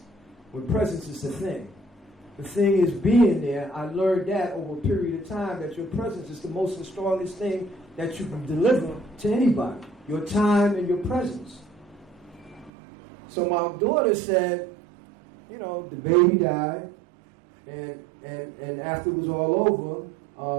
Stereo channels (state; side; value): drops out; left; at 12.7 s